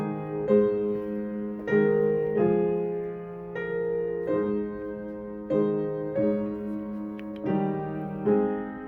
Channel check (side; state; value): both; identical; correlation 1.00